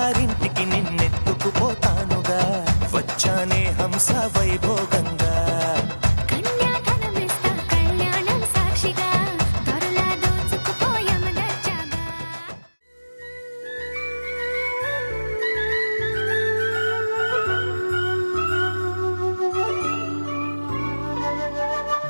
నిన్నెత్తుకుపోతానుగా వచ్చానే హంస వైభోగంగా కన్యాధనమిస్తా కళ్యాణం సాక్షిగా దొరలా దోచుకుపోయామ దర్జాగా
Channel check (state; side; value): inverted; both; correlation -1.00